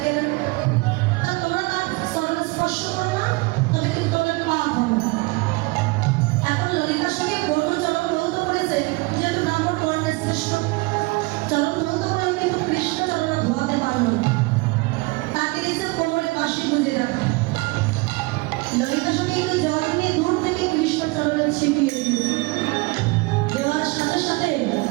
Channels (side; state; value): left; quieter; 25.3 dB